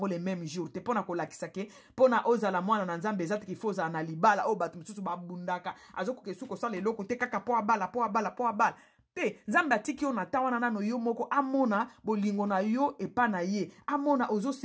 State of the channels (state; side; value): identical; both; correlation 1.00